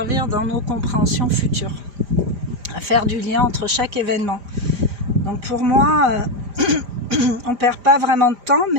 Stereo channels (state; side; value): late; left; 5.0 ms